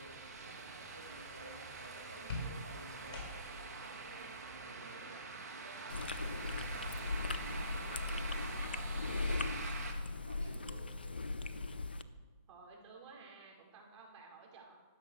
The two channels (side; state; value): both; inverted; correlation -0.62